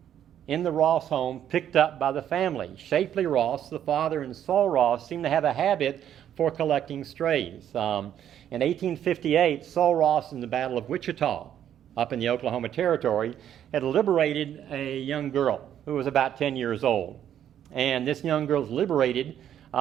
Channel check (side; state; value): left; quieter; 10.2 dB